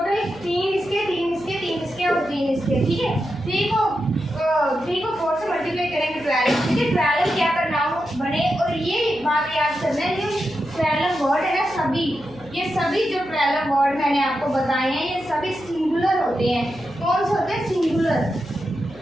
3 इसके, 3 इसके, 3 इसके और 3 इसके। ठीक है, 3 को 4 से मल्टीप्लाई करेंगे 12। ठीक है, 12 क्या प्रोनाउन बने। और ये बात याद करना है, जो 12 वर्ड है ना, सभी ये सभी जो 12 वर्ड मैंने आपको बताए हैं, ये सभी सिंगुलर होते हैं। कौन से होते हैं, सिंगुलर।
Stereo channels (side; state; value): right; noise; hum, 20 dB below the sound